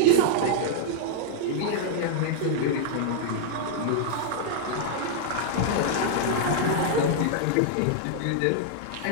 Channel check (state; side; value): different; both; correlation -0.01